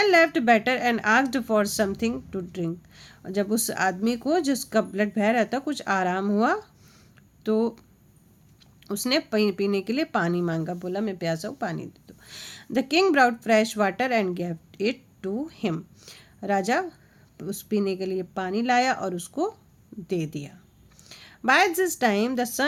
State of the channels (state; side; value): identical; both; correlation 1.00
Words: left better and asked for something to drink. जब उस आदमी को जिसका ब्लड बह रहा था कुछ आराम हुआ तो उसने पीने के लिए पानी मांगा, बोला मैं प्यासा हूँ, पानी दे दो। The king brought fresh water and gave it to him. राजा उस पीने के लिए पानी लाया और उसको दे दिया। By this time the